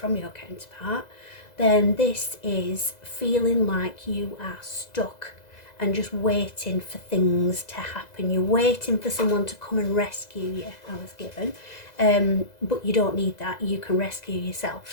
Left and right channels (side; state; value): right; late; 2.0 ms